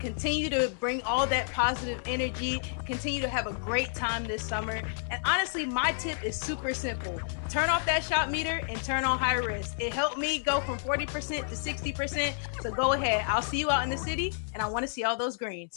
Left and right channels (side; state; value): right; silent; digital silence